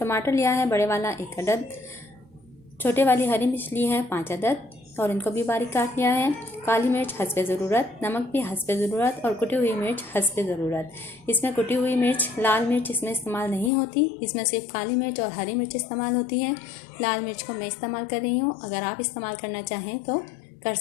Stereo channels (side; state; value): right; drops out; at 13.7 s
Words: टमाटर लिया है बड़े वाला 1 अदद, छोटे वाली हरी मिर्च ली है 5 अदद और इनको भी बारीक काट लिया है। काली मिर्च हस्बे ज़रूरत, नमक भी हस्बे ज़रूरत और कुटी हुई मिर्च हस्बे ज़रूरत। इसमें कुटी हुई मिर्च, लाल मिर्च इसमें इस्तेमाल नहीं होती, इसमें सिर्फ काली मिर्च और हरी मिर्च इस्तेमाल होती है। लाल मिर्च को मैं इस्तेमाल कर रही हूँ, अगर आप इस्तेमाल करना चाहें तो कर